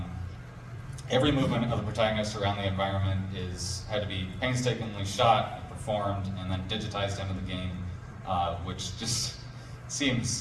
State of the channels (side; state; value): both; identical; correlation 1.00